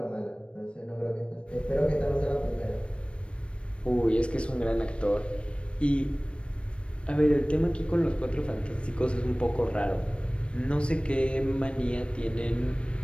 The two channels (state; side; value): late; right; 0.059 ms